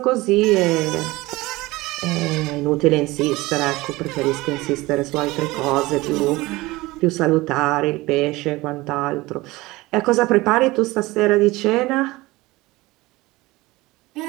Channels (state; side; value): quieter; left; 20.5 dB